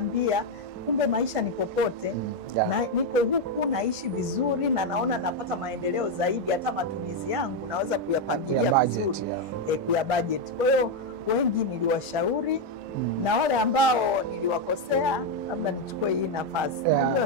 kumbe maisha ni popote. Na niko huku naishi vizuri na naona napata maendeleo zaidi, hata matumizi yangu naweza kuyapangilia vizuri, kuya budget. Kwa hiyo wengi niliwashauri na wale ambao niliwakosea labda nichukue hii nafasi.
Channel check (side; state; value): both; normal; correlation 0.04